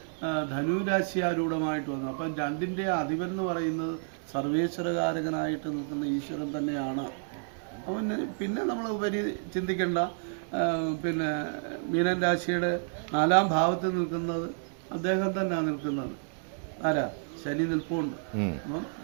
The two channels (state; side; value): silent; left; digital silence